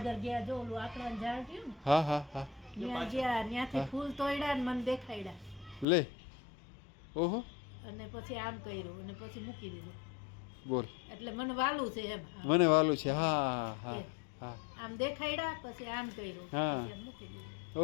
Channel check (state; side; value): drops out; right; at 5.9 s